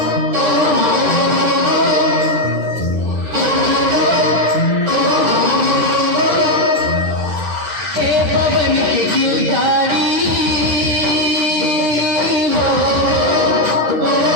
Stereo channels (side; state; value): left; late; 10 ms